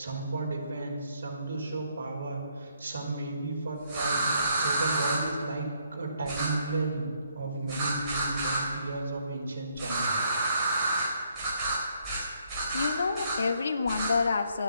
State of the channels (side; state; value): both; inverted; correlation -0.70